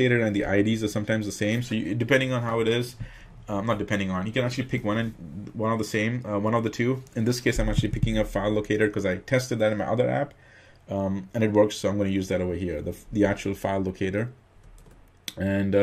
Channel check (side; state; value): both; identical; correlation 1.00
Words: and the IDs are sometimes the same. So depending on how it is, not depending on, you can actually pick one of the same, one of the two. In this case, I'm actually picking up file locator because I tested that in my other app, and it works. So I'm going to use that over here, the actual file locator. And